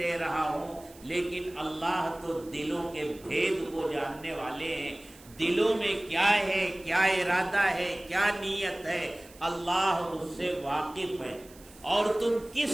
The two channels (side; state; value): right; noise; hiss, 23 dB below the sound